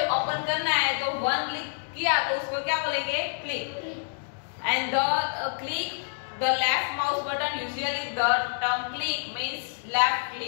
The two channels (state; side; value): silent; right; digital silence